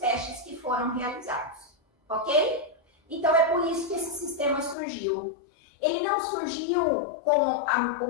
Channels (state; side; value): drops out; right; at 4.8 s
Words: que foram realizados. Ok? Então, é por isso que esse sistema surgiu. Ele não surgiu com o